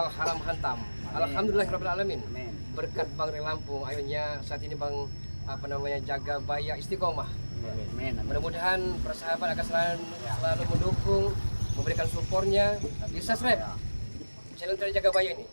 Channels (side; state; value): both; inverted; correlation -1.00